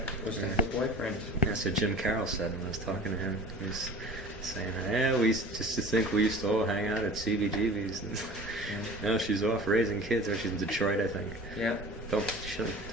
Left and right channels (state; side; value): normal; both; correlation 0.40